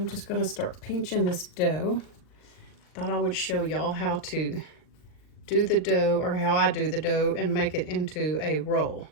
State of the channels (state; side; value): late; right; 39 ms